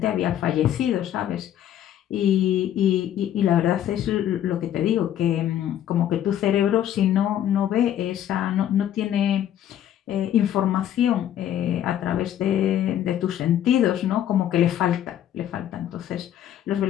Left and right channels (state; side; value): quieter; right; 11.0 dB